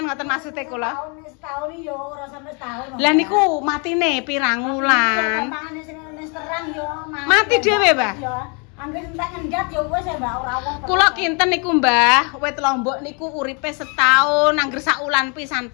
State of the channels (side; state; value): right; quieter; 34.8 dB